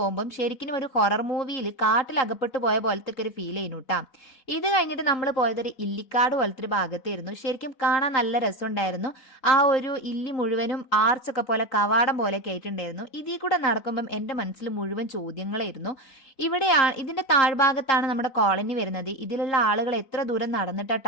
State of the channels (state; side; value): late; right; 3.8 ms